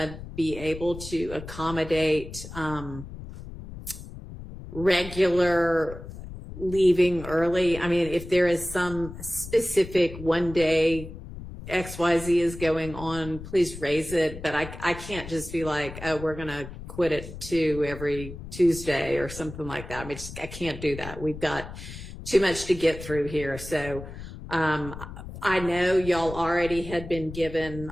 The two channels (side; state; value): left; noise; rumble, 12 dB below the sound